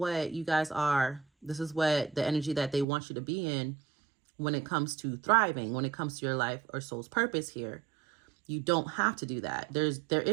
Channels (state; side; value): drops out; left; at 2.9 s